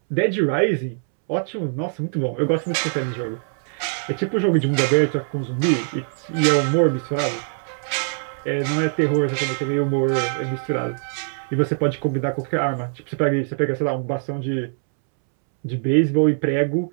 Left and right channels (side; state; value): left; silent; 64 dB below the other